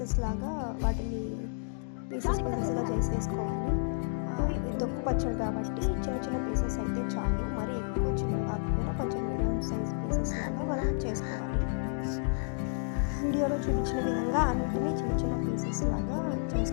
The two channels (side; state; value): right; silent; digital silence